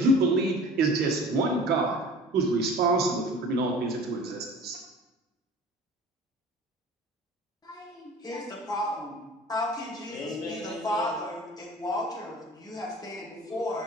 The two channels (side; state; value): both; normal; correlation 0.42